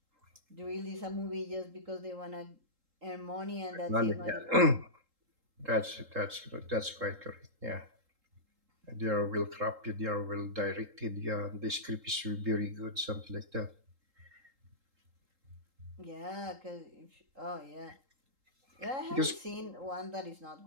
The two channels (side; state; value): left; late; 3.8 ms